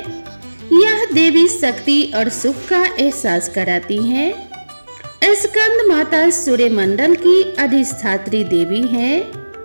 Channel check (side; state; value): both; inverted; correlation -1.00